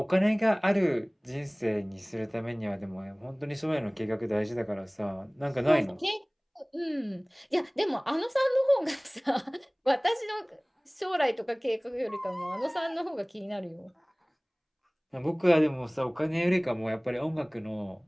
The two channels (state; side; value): identical; both; correlation 1.00